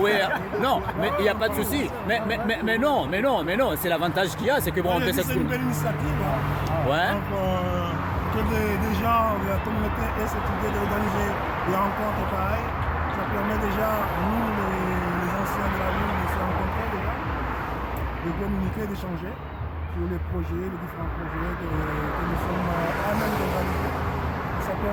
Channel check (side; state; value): both; identical; correlation 1.00